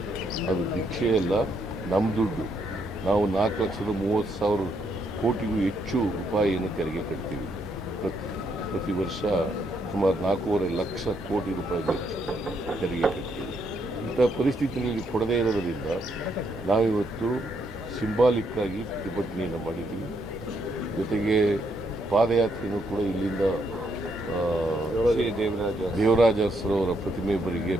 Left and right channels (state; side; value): normal; both; correlation 0.75